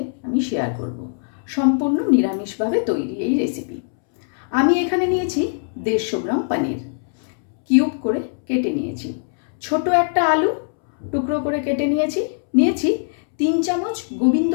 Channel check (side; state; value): right; silent; 65 dB below the other